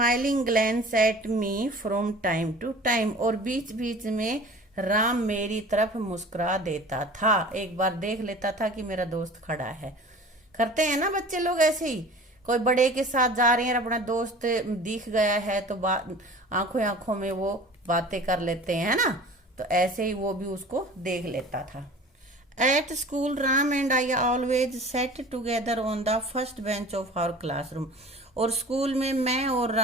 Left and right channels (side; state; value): both; normal; correlation 0.42